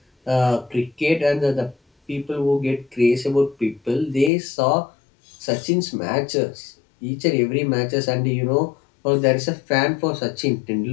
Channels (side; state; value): right; drops out; at 4.3 s